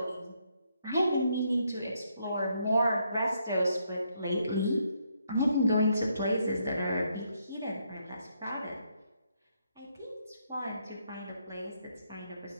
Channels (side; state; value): both; inverted; correlation -0.75